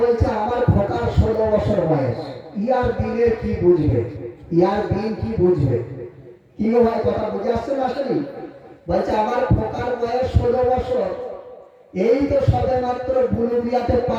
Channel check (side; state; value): both; identical; correlation 1.00